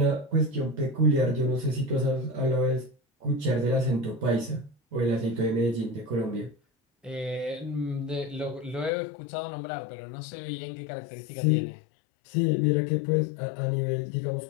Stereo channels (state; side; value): drops out; right; at 8.9 s